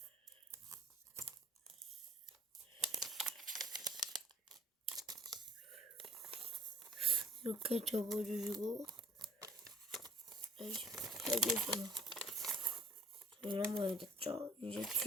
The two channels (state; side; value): normal; both; correlation 0.55